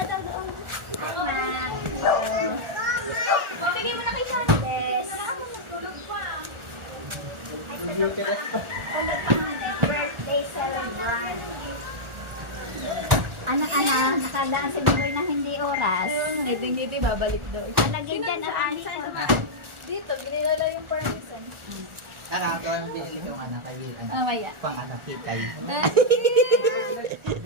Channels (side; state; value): left; late; 1.4 ms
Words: daw doon. Mabigay mo na kay Sandes. Birthday celebrant. Anak-anak, nakadaan si Bigoy na hindi oras. Ngiti-ngiti, babalik doon. Nalagyan dyan ang anis. Dito, ginilala yung permission. Ako ang pinili ko ng anak kaibigan. Mamaya. Pang anak kitay.